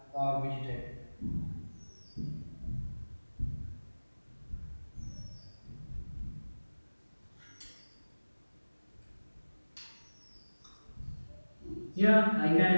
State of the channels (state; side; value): inverted; both; correlation -1.00